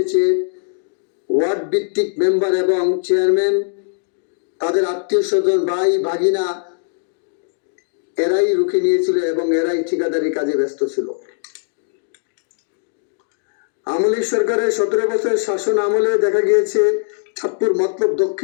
ওয়ার্ড ভিত্তিক মেম্বার এবং চেয়ারম্যান তাদের আত্মীয় স্বজন ভাই ভাগিনা এরাই রুখে নিয়েছিল এবং এরাই ঠিকাদারি কাজে ব্যস্ত ছিল। আওয়ামী লীগ সরকারের 17 বছর শাসন আমলে দেখা গিয়েছে চাঁদপুর মতলব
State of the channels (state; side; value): silent; right; digital silence